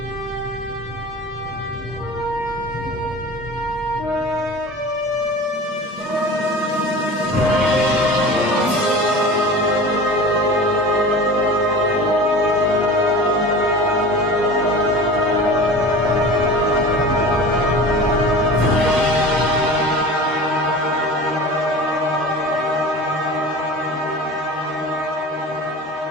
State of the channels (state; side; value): normal; both; correlation 0.36